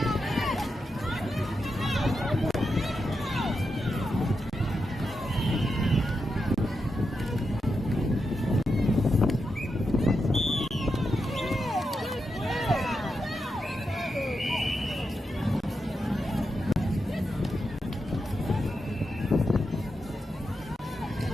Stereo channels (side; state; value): both; normal; correlation 0.87